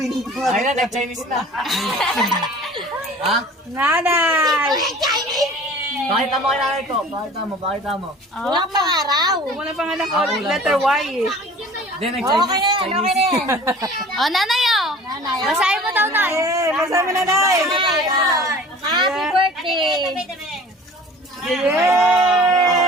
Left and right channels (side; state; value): both; normal; correlation 0.44